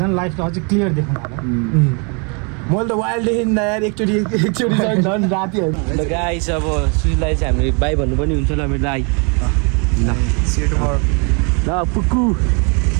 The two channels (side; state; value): left; quieter; 34.9 dB